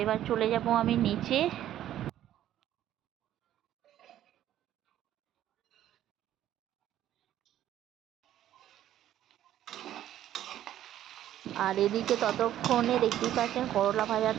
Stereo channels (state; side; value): quieter; left; 12.1 dB